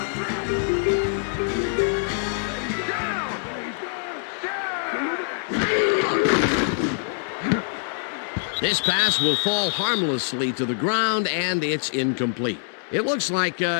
This pass will fall harmlessly to the ground, and it's incomplete. It looks like,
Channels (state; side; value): silent; right; digital silence